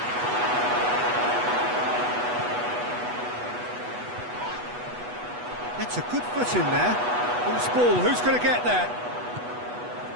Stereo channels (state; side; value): late; left; 8.2 ms